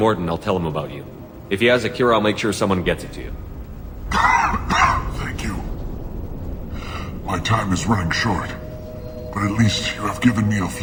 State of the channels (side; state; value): both; identical; correlation 1.00